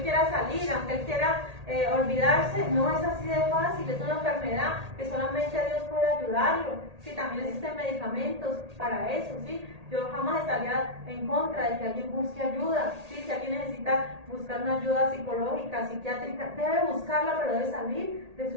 quiera salir, aunque él quiera olvidarse, no es así de fácil, es una enfermedad que solamente Dios puede ayudarlo. Sí, también existen medicamentos para eso, ¿sí? Yo jamás estaría en contra de que alguien busque ayuda, ¿sí? Si alguien necesita buscar una ayuda psicológica, psiquiátrica, debe buscarla, pero debe salir de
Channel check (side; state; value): left; late; 1.8 ms